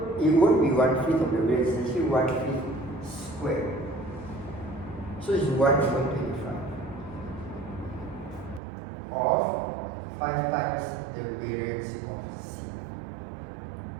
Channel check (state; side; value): drops out; left; at 8.6 s